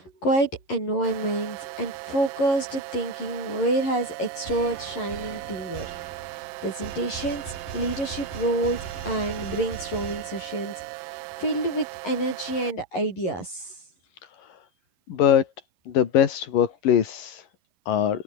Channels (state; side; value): late; right; 11 ms